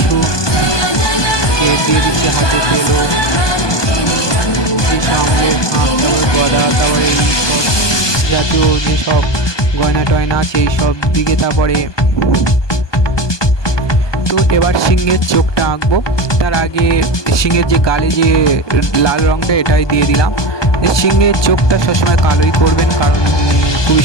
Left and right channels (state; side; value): late; right; 1.2 ms